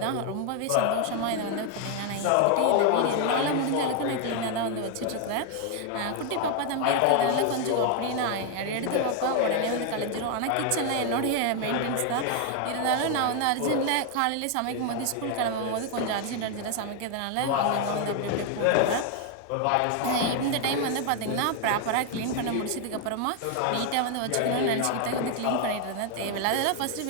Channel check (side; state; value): both; different; correlation 0.00